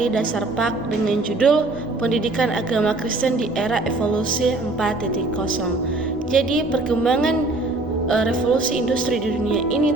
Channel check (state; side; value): quieter; left; 3.0 dB